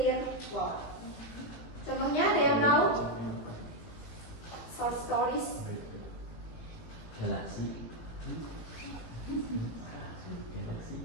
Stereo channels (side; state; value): right; late; 18 ms